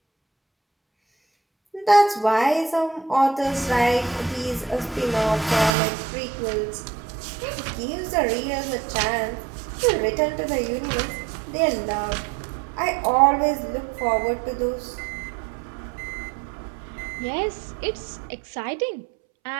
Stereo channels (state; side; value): drops out; left; at 5.7 s